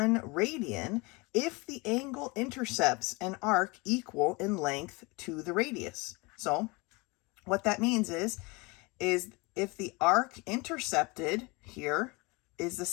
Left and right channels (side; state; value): right; quieter; 26.4 dB